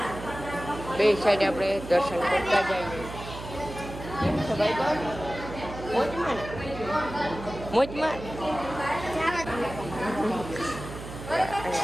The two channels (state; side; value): noise; right; hum, 11 dB below the sound